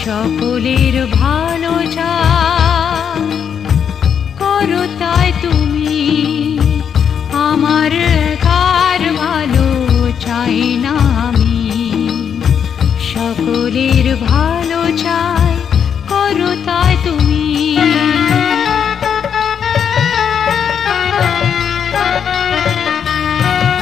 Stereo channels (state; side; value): quieter; right; 7.8 dB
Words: সকলের ভালো চাই, করো তাই তুমি। আমার একার ভালো চাই না আমি, সকলের ভালো চাই, করো তাই তুমি।